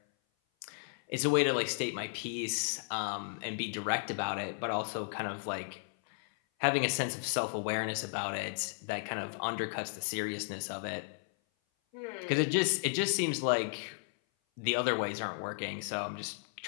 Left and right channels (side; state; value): right; silent; 55 dB below the other